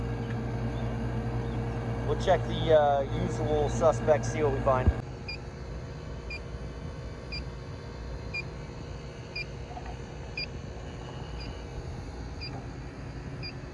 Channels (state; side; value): identical; both; correlation 1.00